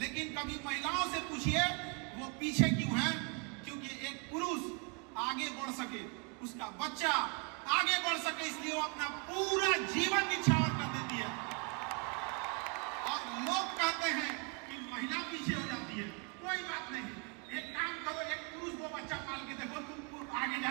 कभी महिलाओं से पूछिए वो पीछे क्यों है। क्योंकि एक पुरुष आगे बढ़ सके, उसका बच्चा आगे बढ़ सके, इसलिए वो अपना पूरा जीवन निछावर कर देती है। और लोग कहते हैं कि महिला पीछे हो जाती है। कोई बात नहीं, एक काम करो, एक पुरुष वो बच्चा पाल के देखो, तुम आगे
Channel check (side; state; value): left; quieter; 34.9 dB